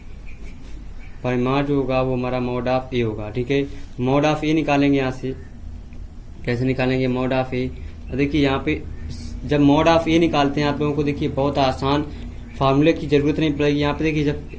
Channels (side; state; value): both; identical; correlation 1.00